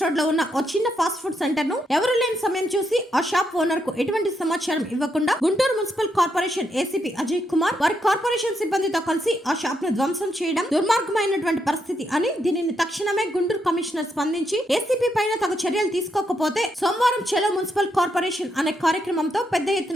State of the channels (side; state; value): both; normal; correlation 0.79